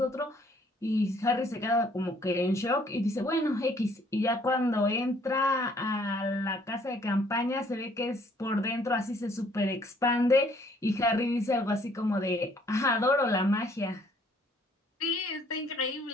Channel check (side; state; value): both; normal; correlation 0.62